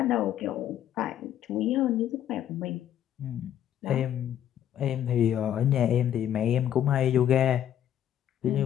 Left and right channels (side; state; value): right; quieter; 10.7 dB